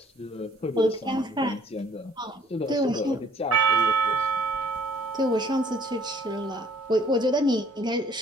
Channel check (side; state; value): both; normal; correlation 0.59